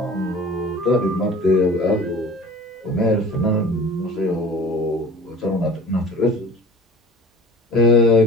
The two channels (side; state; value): both; normal; correlation 0.43